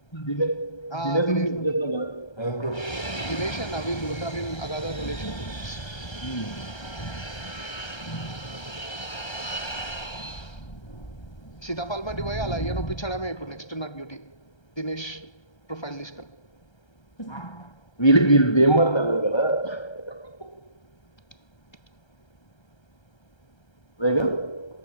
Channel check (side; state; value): right; late; 1.3 ms